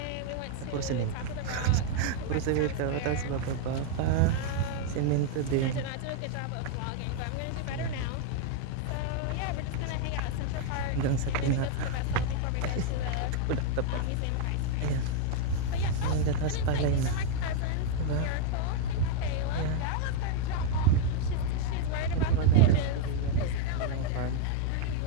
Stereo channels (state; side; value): different; both; correlation 0.01